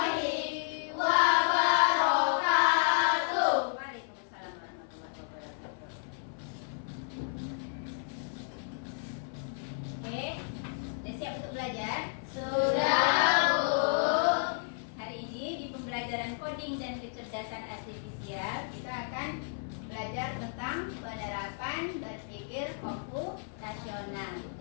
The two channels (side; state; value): right; silent; 56 dB below the other